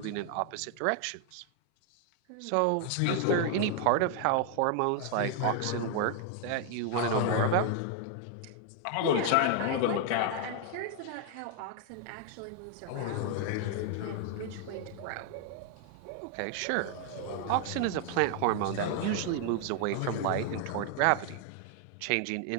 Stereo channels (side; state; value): both; different; correlation 0.00